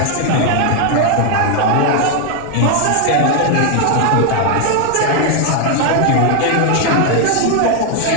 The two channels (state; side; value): different; both; correlation 0.00